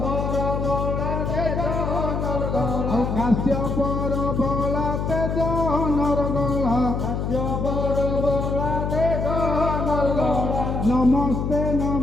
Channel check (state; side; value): noise; left; hum, 2 dB below the sound